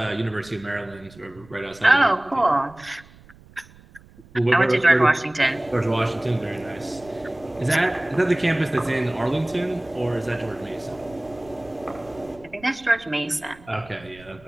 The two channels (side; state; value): right; noise; rumble, 24 dB below the sound